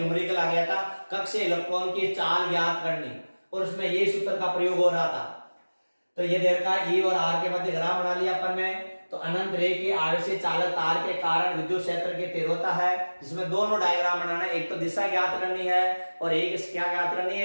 आ गया था, कक्षीय इलेक्ट्रॉन की चाल ज्ञात करनी, और उसमें ये सूत्र का प्रयोग हो रहा था। तो ये दे रखा E और R के मध्य ग्राफ बना लिया अपन ने। तो अनंत रेखीय आवेशीय चालक तार के कारण विद्युत क्षेत्र की तीव्रता है, जिसमें दोनों डायग्राम बनाना है, एक तो दिशा ज्ञात करनी है और एक क्या ज्ञात करनी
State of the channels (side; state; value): both; inverted; correlation -1.00